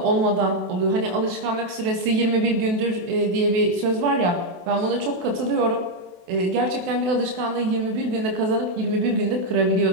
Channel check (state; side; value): late; left; 28 ms